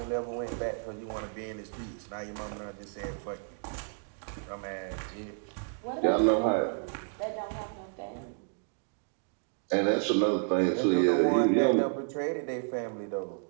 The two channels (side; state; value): left; silent; 57 dB below the other